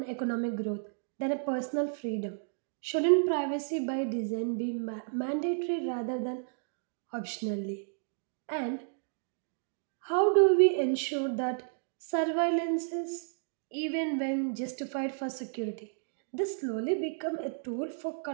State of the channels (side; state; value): left; silent; digital silence